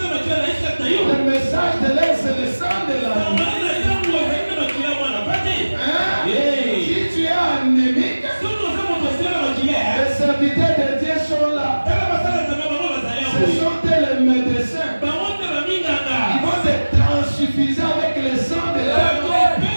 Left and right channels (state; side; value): inverted; both; correlation -1.00